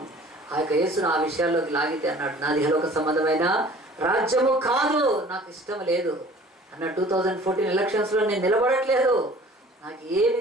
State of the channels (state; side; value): normal; both; correlation 0.49